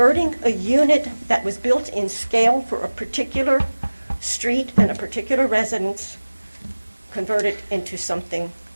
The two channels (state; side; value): inverted; both; correlation -1.00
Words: a unit that was built in scale for a particular street and a particular residence, convert it into something